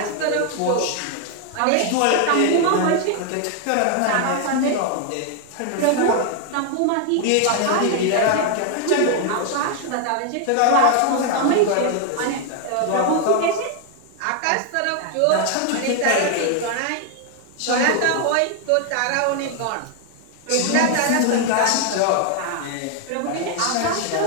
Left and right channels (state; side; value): different; both; correlation 0.00